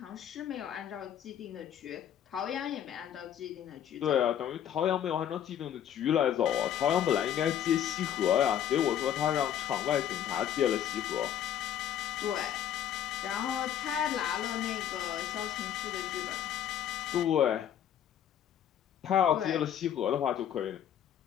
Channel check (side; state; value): right; quieter; 10.1 dB